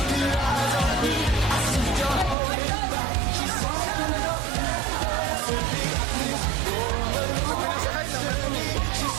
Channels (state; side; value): drops out; left; at 2.4 s